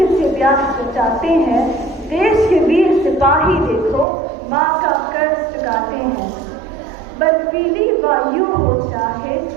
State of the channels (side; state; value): left; drops out; at 4.0 s